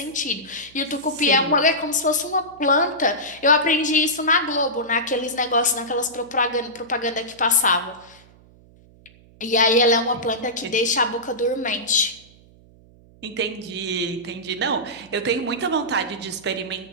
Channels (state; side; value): noise; right; hum, 26 dB below the sound